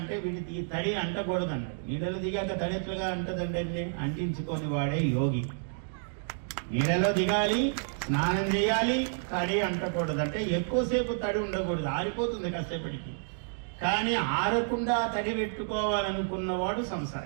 వీడికి ఈ తడి అంటకూడదు అన్నాడు. నీళ్ళలో దిగాక తడి ఎట్లుగా అంటదంటే అంటించుకొని వాడే యోగి. నీళ్ళలో దిగాలి, స్నానం చేయాలి, తడి అంటకూడదు. అంటే ఎక్కువసేపు తడి ఉండకూడదు, ఆరిపోతుంది కాసేపటికి. కానీ ఆరకుండా తడి పెట్టుకోవాలనుకున్నవాడు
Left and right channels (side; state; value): left; silent; digital silence